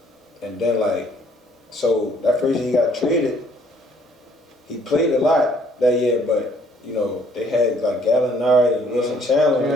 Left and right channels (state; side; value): normal; both; correlation 0.62